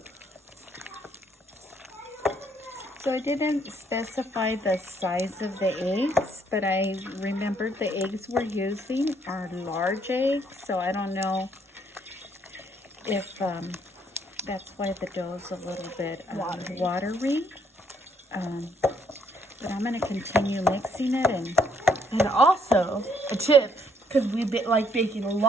So I didn't specify the size of the eggs, but I remembered the eggs we're using are large eggs, so I don't know if that's why the dough is a little bit watery. But I'm going to continue mixing it. And also, a tip, because we like baking a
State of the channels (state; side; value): normal; both; correlation 0.68